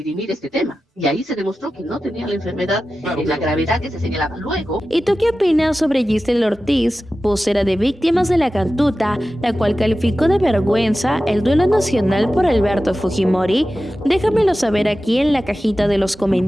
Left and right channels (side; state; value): both; normal; correlation 0.94